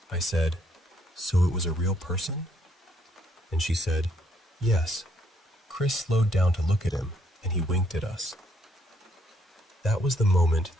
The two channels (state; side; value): normal; both; correlation 0.70